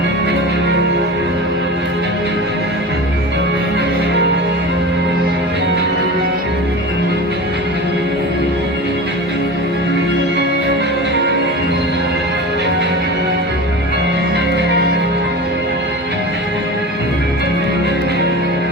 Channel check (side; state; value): both; normal; correlation 0.31